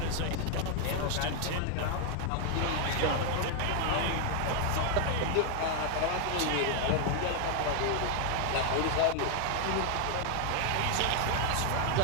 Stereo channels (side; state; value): both; different; correlation 0.00